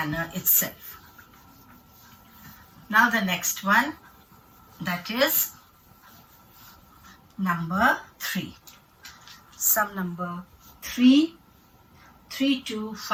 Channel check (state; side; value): identical; both; correlation 1.00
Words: itself. Now the next one, that is number 3. Sum number